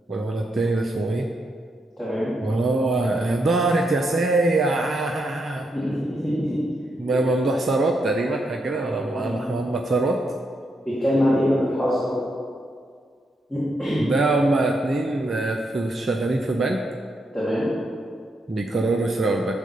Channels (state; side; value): normal; both; correlation 0.80